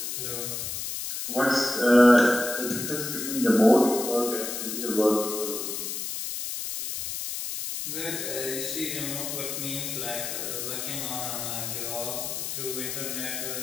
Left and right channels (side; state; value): left; noise; hiss, 4 dB below the sound